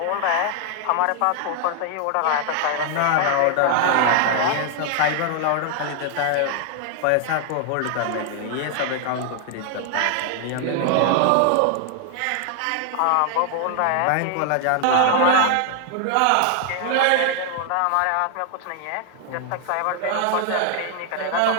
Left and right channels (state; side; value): different; both; correlation 0.00